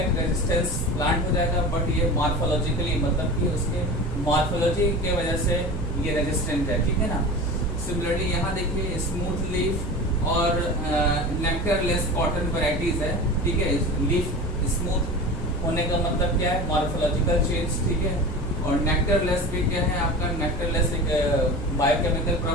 रेजिस्टेंस प्लांट हो जाएगा। बट ये मॉर्फोलॉजिकली मतलब कि उसके मॉर्फोलॉजी के वजह से ये रेजिस्टेंट है। ठीक है ना, सिमिलरली यहाँ देखिए स्मूथ लीफ और नेक्टर लेस कॉटन वैरायटीज है। ठीक है, लीफ स्मूथ होने का मतलब क्या है, मॉर्फोलॉजिकल चेंज। ठीक है, और नेक्टर लेस भी क्या है आपका, नेक्टर लेस एक बायोकेमिकल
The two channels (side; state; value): right; noise; hum, 8 dB below the sound